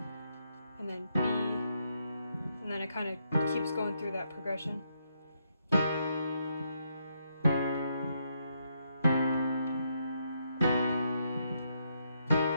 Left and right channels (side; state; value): both; inverted; correlation -0.78